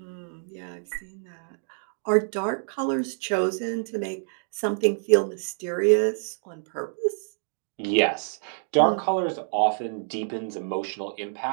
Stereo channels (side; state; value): left; silent; 60 dB below the other